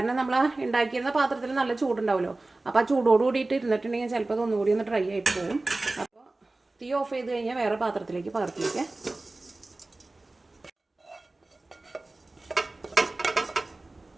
നമ്മൾ ഉണ്ടാക്കിയിരുന്ന പാത്രത്തിൽ നല്ല ചൂടുണ്ടാവുമല്ലോ, അപ്പോൾ ആ ചൂടോട് കൂടിയിട്ട് ഇരുന്നിട്ടുണ്ടെങ്കിൽ ചിലപ്പോൾ അത് ഒന്നുകൂടി ഒന്ന് ഡ്രൈ ആയിട്ട് പോകും. അപ്പോൾ തീ ഓഫ് ചെയ്ത് കഴിഞ്ഞാൽ വേറെ പാത്രത്തിലേക്ക് പകർത്തി വയ്ക്കുക.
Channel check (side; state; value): left; quieter; 3.1 dB